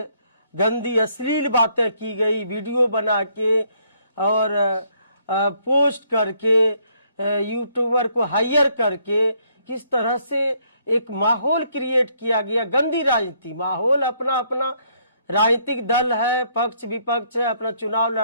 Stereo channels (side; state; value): both; inverted; correlation -0.69